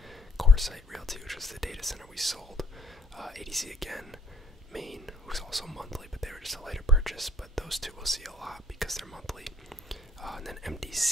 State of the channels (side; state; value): both; normal; correlation 0.61